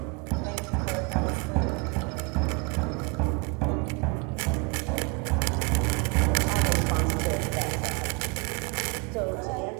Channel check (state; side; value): quieter; left; 30.4 dB